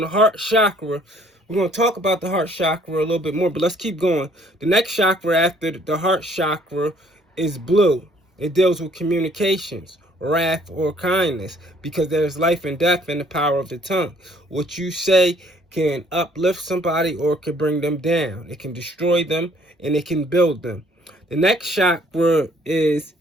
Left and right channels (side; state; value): both; normal; correlation 0.61